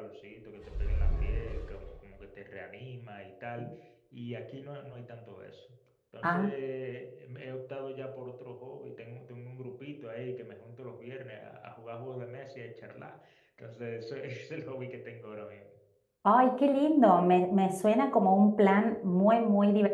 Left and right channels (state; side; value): identical; both; correlation 1.00